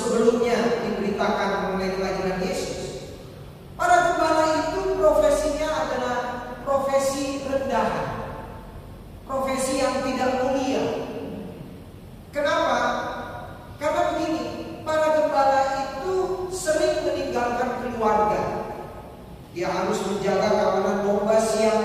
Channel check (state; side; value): identical; both; correlation 1.00